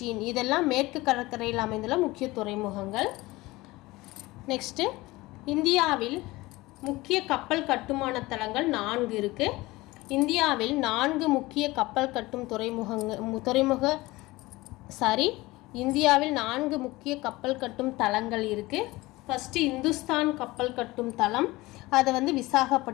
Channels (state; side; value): quieter; right; 20.3 dB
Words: இதெல்லாம் மேற்கு கடற்கரையில் அமைந்துள்ள முக்கிய துறைமுகங்கள். நெக்ஸ்ட்டு இந்தியாவில் முக்கிய கப்பல் கட்டுமான தளங்கள் 4 இருக்குது. இந்தியாவில் 4 முக்கிய கப்பல் கட்டும் இந்தியாவில் 4 முக்கிய கப்பல் கட்டும் தளங்கள் இருக்குது. ஃபஸ்ட்டு இந்துஸ்தான் கப்பல் கட்டும் தளம், அது